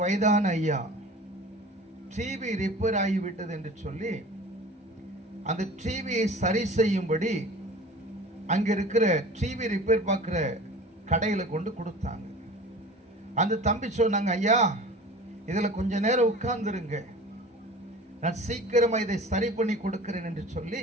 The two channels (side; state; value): both; normal; correlation 0.40